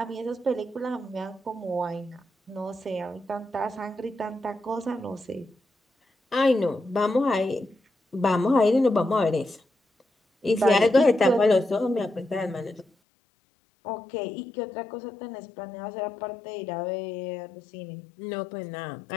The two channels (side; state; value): right; drops out; at 12.9 s